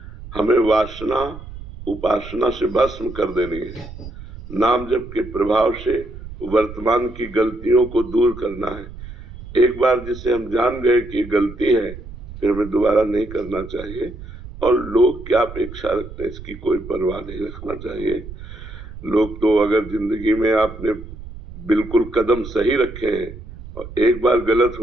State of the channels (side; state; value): right; noise; rumble, 14 dB below the sound